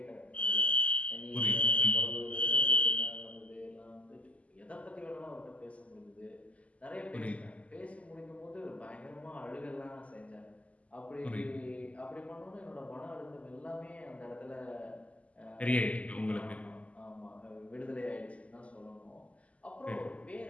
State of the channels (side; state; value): right; late; 0.068 ms